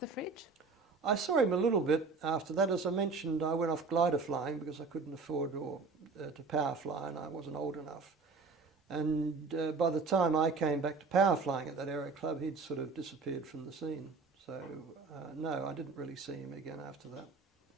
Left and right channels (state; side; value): quieter; left; 4.4 dB